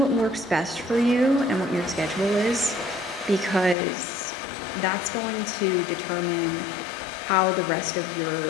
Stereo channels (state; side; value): drops out; right; at 3.8 s